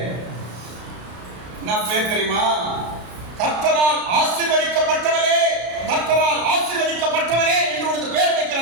என்ன பேர் தெரியுமா? கர்த்தரால் ஆசீர்வதிக்கப்பட்டவரே, கர்த்தரால் ஆசீர்வதிக்கப்பட்டவரே என்று ஒரு பேர்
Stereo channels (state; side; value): late; left; 33 ms